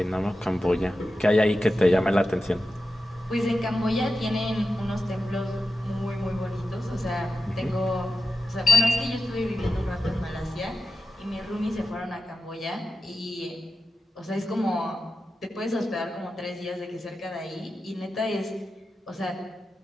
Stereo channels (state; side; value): normal; both; correlation 0.91